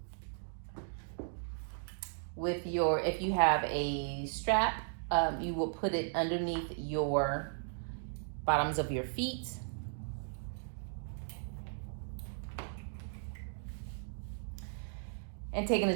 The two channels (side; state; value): left; silent; digital silence